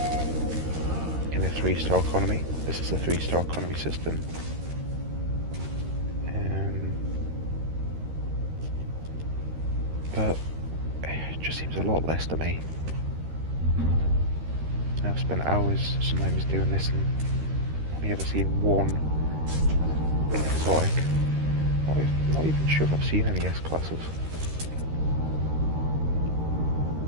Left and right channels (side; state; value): left; late; 13 ms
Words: in a 3-star economy. This is a 3-star economy system. But it just seems a lot less to me. I've spent hours sometimes doing this and only ever seen one exotic. Not even sure if I've seen any S-classes.